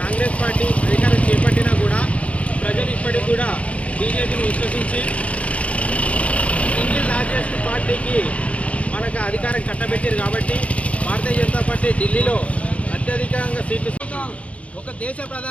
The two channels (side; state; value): right; late; 0.064 ms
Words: పార్టీ అధికారం చేపట్టినా కూడా ప్రజలు ఇప్పటికి కూడా బీజేపీని విశ్వసించి సింగిల్ లార్జెస్ట్ పార్టీకి మనకు అధికారం కట్టబెట్టారు కాబట్టి భారతీయ జనతా పార్టీ ఢిల్లీలో అత్యధికంగా సీట్లు ఒక దేశ